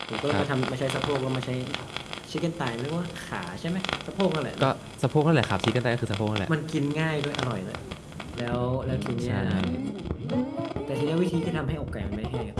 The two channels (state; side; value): identical; both; correlation 1.00